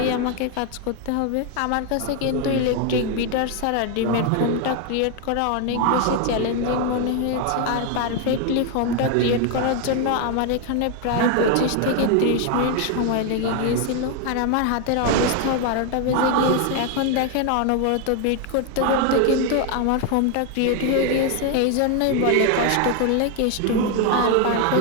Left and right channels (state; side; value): different; both; correlation 0.01